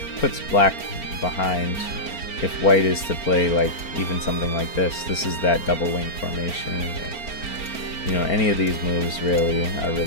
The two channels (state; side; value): late; right; 4.4 ms